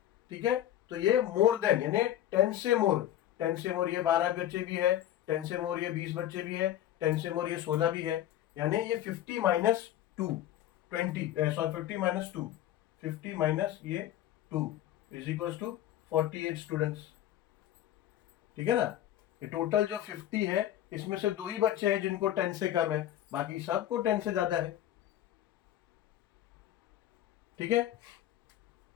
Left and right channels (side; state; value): right; quieter; 12.2 dB